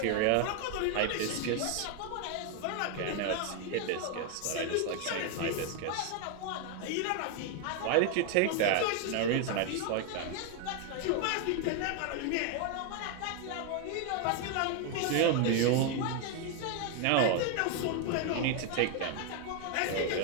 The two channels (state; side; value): different; both; correlation 0.01